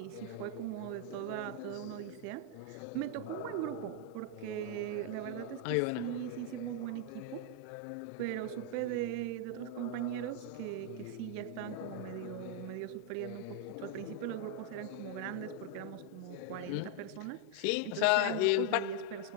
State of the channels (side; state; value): both; different; correlation 0.01